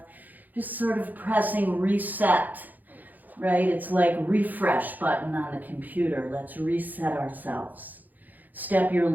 Just sort of pressing reset, right? It's like refresh button on the computer. Let's reset ourselves. Step your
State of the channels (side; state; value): left; late; 0.083 ms